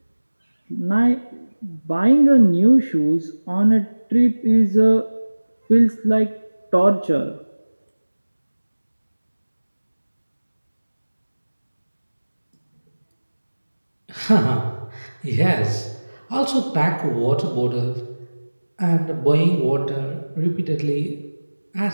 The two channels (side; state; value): both; inverted; correlation -1.00